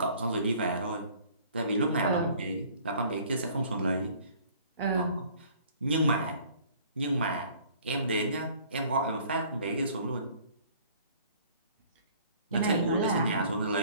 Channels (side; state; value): both; inverted; correlation -0.54